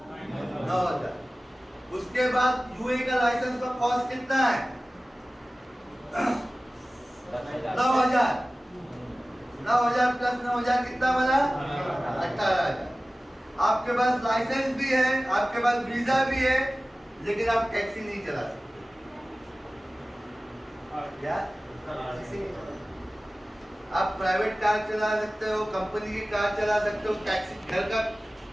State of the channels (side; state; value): both; normal; correlation 0.97